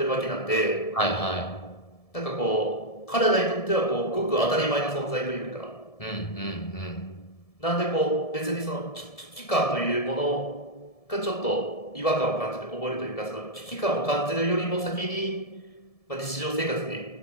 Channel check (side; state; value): right; late; 1.7 ms